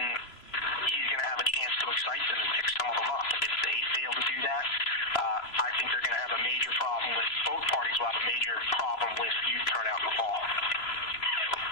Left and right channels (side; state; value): right; late; 3.0 ms